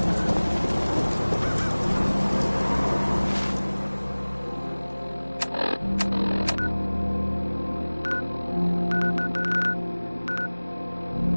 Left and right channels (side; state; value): both; inverted; correlation -1.00